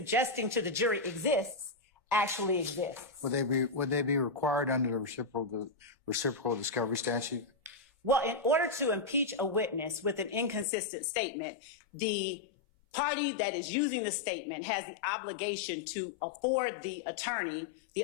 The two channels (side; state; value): right; drops out; at 10.7 s